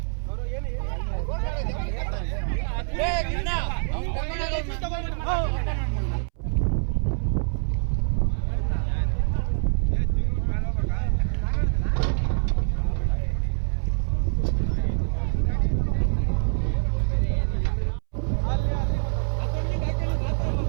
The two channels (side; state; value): left; silent; 62 dB below the other